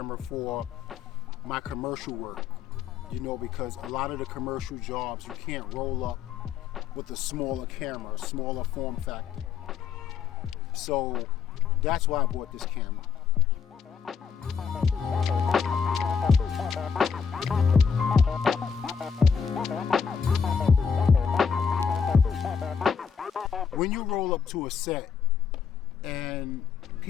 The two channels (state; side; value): quieter; right; 6.5 dB